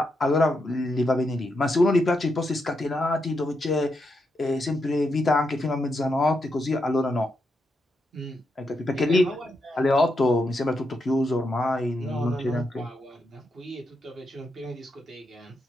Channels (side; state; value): both; normal; correlation 0.83